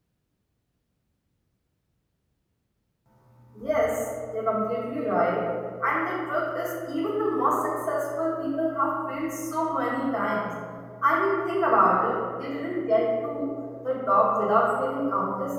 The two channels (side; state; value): both; identical; correlation 1.00